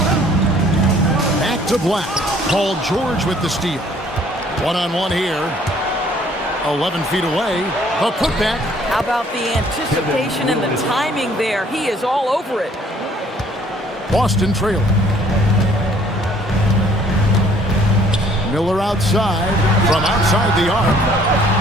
Back to Black. Paul George with the steal. One-on-one here. 11 feet away. A putback. How about the anticipation and the timing there? He is all over it. Boston trailing. Miller outside. From outside the arc.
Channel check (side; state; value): both; normal; correlation 0.59